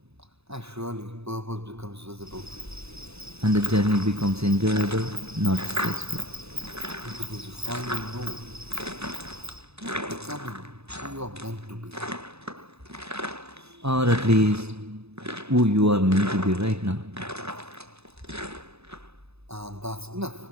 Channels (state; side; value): late; left; 0.79 ms